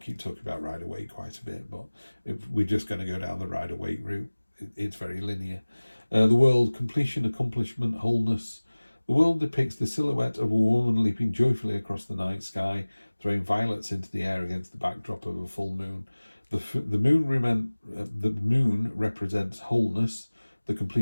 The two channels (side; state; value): both; inverted; correlation -1.00